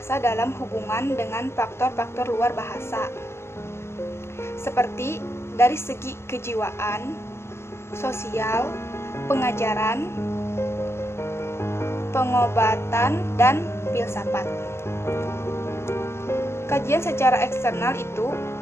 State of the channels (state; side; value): late; right; 0.12 ms